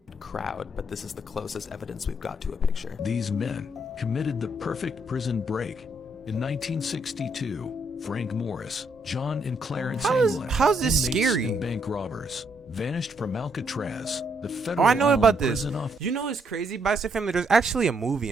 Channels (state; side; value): normal; both; correlation 0.73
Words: Crowd, but this is the closest evidence we've got to a picture. These men committed the perfect prison break. In 1962, Frank Morris, John and Clarence England, how's this inmates scary? and bank robbers, vanished from Alcatraz, the federal Oh, I know island about this. prison off. You know what's crazy, Box Set Family? There's actually a